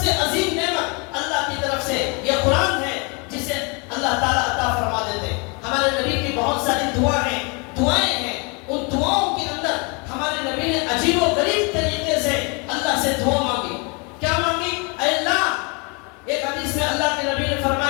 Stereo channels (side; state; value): right; quieter; 32.0 dB